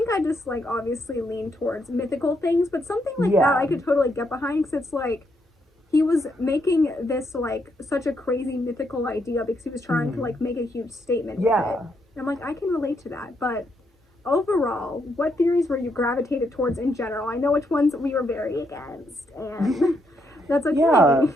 I just obviously lean towards mythical things, but something that I could totally get behind, because it's he was making this such a crazy mythical idea because he was trying to make a huge statement with it. And I'm I can relate to that. But overall, what theories were you gravitated towards in general? I know which ones we were very against, and that's okay. Yeah.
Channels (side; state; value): both; normal; correlation 0.77